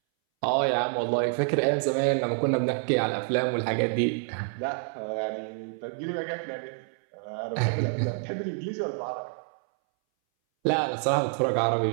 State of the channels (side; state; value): left; silent; 60 dB below the other